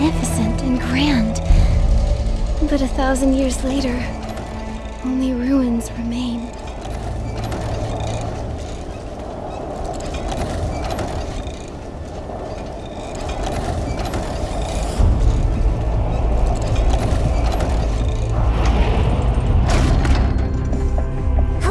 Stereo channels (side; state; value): both; identical; correlation 1.00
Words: and grand. But 1,000 years later, only ruins remain.